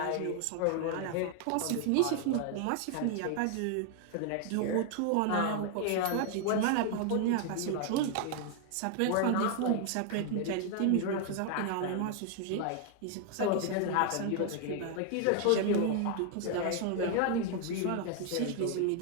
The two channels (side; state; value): both; different; correlation 0.00